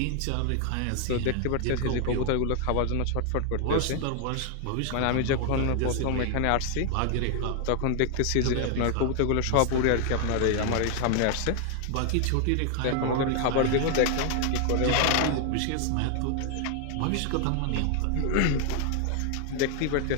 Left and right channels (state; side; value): different; both; correlation 0.00